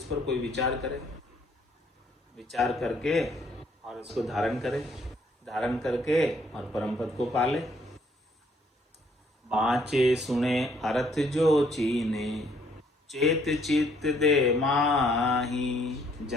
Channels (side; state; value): both; normal; correlation 0.65